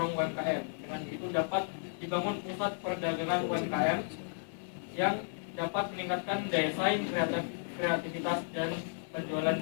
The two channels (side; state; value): right; silent; digital silence